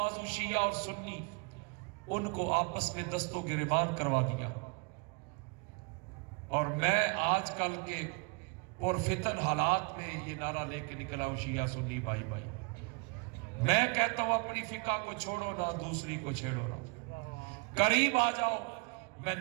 شیعہ اور سنی، ان کو آپس میں دست و گریبان کروا دیا. اور میں آج کل کے پرفتن حالات میں یہ نعرہ لے کے نکلا ہوں، شیعہ سنی بھائی بھائی. میں کہتا ہوں اپنی فقہ کو چھوڑو نہ، دوسری کو چھیڑو نہ. قریب آ جاؤ. میں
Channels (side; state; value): left; quieter; 31.9 dB